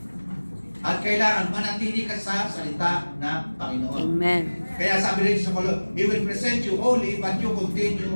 At kailangan manatili ka sa salita ng Panginoon. Amen. Kaya sabi rin sa Colossians, He will present you holy, but you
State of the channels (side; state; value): both; inverted; correlation -1.00